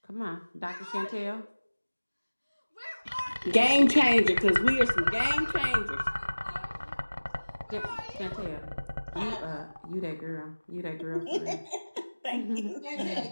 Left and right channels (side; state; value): both; inverted; correlation -1.00